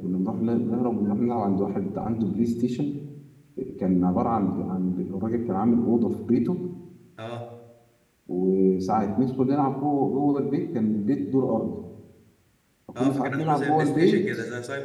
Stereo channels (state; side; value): identical; both; correlation 1.00